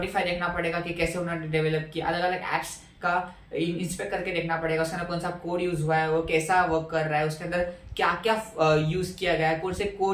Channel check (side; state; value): both; identical; correlation 1.00